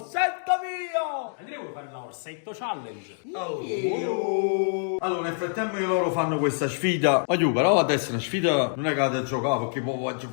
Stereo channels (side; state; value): right; silent; digital silence